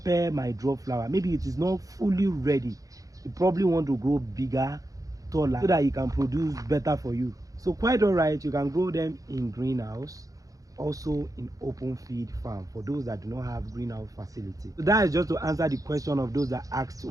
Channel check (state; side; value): late; left; 0.17 ms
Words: might drop flower. Maybe it is not fully ready. You probably want to grow bigger, taller, so that it can produce better for you. So quite all right, you can grow them in greenhouse, also in open feed farm for those that do not have greenhouse facility. So that is just to answer the question of those that asked,